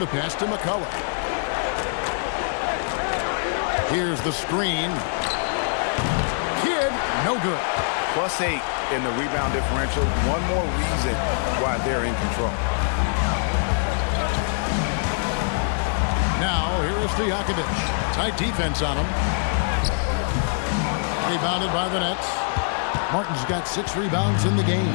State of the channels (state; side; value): silent; right; 63 dB below the other